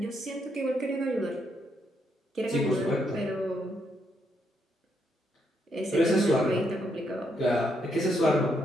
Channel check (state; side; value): normal; both; correlation 0.76